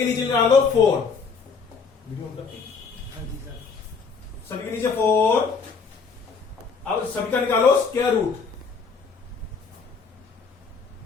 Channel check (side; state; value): right; quieter; 5.2 dB